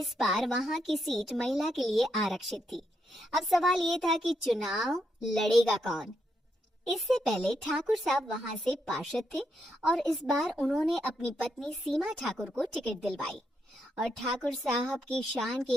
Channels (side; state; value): both; normal; correlation 0.80